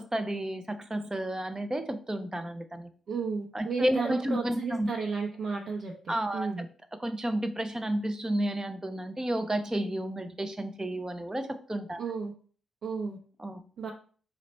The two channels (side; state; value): both; normal; correlation 0.92